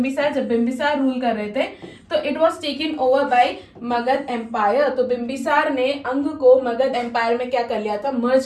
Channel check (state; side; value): identical; both; correlation 1.00